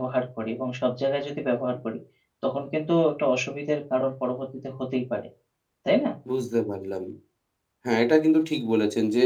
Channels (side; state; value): both; identical; correlation 1.00